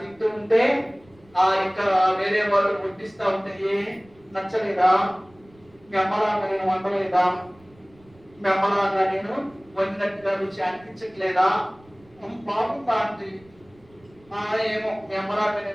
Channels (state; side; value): noise; right; rumble, 28 dB below the sound